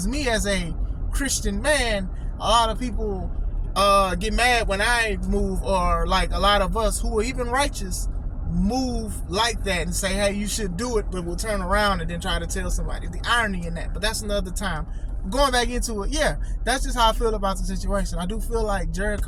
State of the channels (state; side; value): identical; both; correlation 1.00